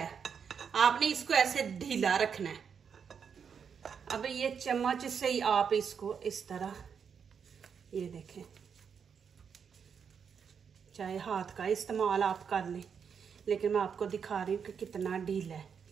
आपने इसको ऐसे ढीला रखना है। अब ये चम्मच से ही आप इसको इस तरह, ये देखें, चाहे हाथ का इस्तेमाल आप कर लें, लेकिन मैं आपको दिखा रही हूँ कि कितना ढीला है।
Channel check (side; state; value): left; quieter; 6.8 dB